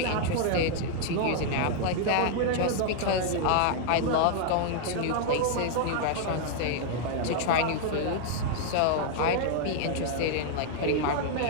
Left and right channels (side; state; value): both; different; correlation 0.00